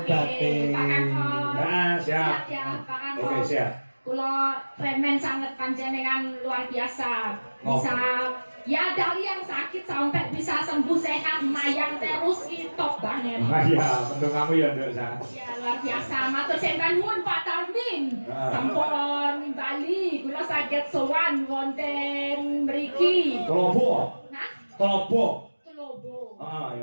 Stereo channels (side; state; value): both; inverted; correlation -1.00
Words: batin. Pak Kakon. Nah, siap. Ya, Pak Kakon. Oke, siap. Kula remen sangat panjenengan luar biasa. Oh. Bisa ya dari yang sakit sampai bisa sembuh sehat mayang terus top banget. Ah iya, mendung kamu ya, Nduk. Ya luar biasa. Matur sembah nuwun Pak Tarmin. Ah. Sampun Bali kula saged sowan wonten mriki. Kelopo. Nah, Kelopo. Telobo. Ah